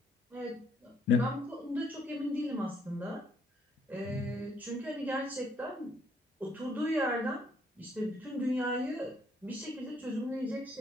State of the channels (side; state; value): both; normal; correlation 0.69